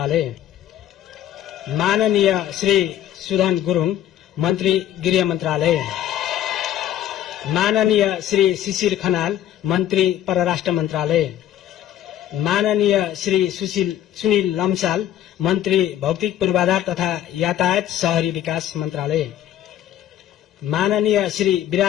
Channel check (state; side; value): quieter; right; 11.6 dB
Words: माननीय श्री सुधन गुरुङ, मन्त्री गृह मन्त्रालय, माननीय श्री शिशिर खनाल, मन्त्री परराष्ट्र मन्त्रालय, माननीय श्री सुनिल लम्साल, मन्त्री भौतिक पूर्वाधार तथा यातायात शहरी विकास मन्त्रालय, माननीय श्री